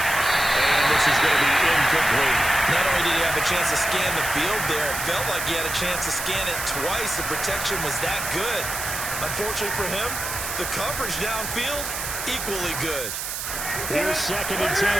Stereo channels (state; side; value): noise; right; hiss, 5 dB below the sound